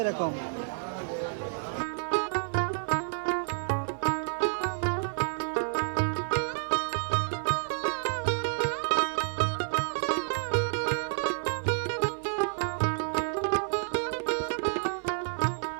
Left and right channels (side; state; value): left; silent; digital silence